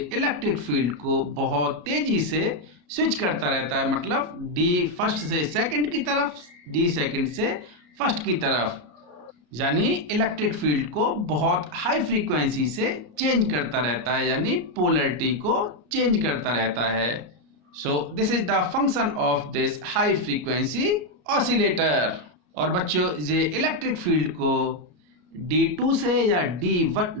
इलेक्ट्रिक फील्ड को बहुत तेजी से स्विच करता रहता है, मतलब डी फर्स्ट से सेकंड की तरफ, डी सेकंड से फर्स्ट की तरफ, यानी इलेक्ट्रिक फील्ड को बहुत हाई फ्रीक्वेंसी से चेंज करता रहता है, यानी पोलरिटी को चेंज करता रहता है। So this is the function of this high frequency oscillator. और बच्चों ये इलेक्ट्रिक फील्ड को D2 से या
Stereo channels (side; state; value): left; late; 33 ms